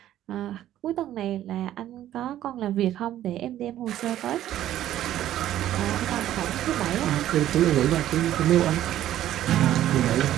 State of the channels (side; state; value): left; quieter; 12.6 dB